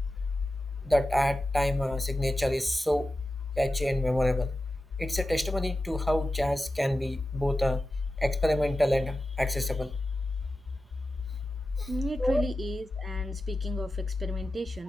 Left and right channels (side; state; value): both; normal; correlation 0.92